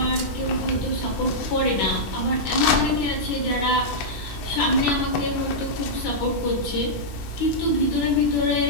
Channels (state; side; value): late; right; 9.9 ms